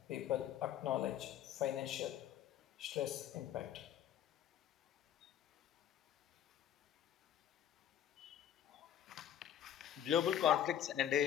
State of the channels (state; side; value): quieter; right; 10.4 dB